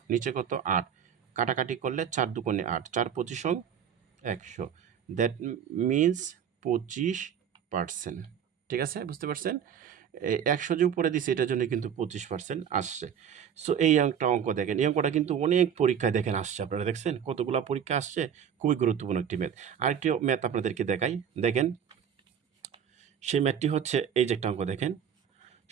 নিচে কত? ৮, কাটাকাটি করলে ৪ দুগুণে ৮, ৪ পঁচিশ ১০০। That means 25%। ঠিক আছে? বুঝতে পারছেন? ১০০ যে উপরে দিছি, এটার জন্য কিন্তু 25% আসছে। এই একটা অঙ্ক দেখেন। এই অঙ্কটা কিন্তু অনেক পরীক্ষায় দেখেন আসছে। আপনারা দেখছেন? কতগুলা পরীক্ষা আসছে। খুবই গুরুত্বপূর্ণ একটি ম্যাথ। আরেকটি ম্যাথ আপনাদেরকে দেখাই। দেখেন, সেই ম্যাথটি হচ্ছে এই যে একটা অঙ্ক দেখেন।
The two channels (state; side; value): quieter; left; 8.3 dB